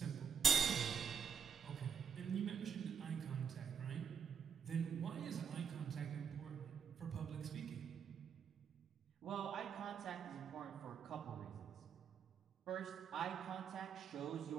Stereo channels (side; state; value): left; quieter; 7.1 dB